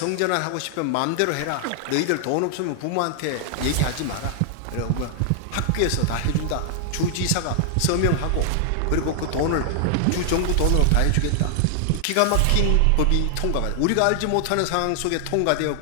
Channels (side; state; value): both; different; correlation 0.00